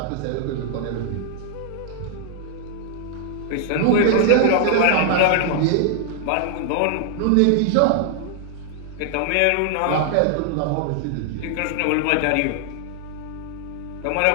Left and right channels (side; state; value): both; different; correlation 0.00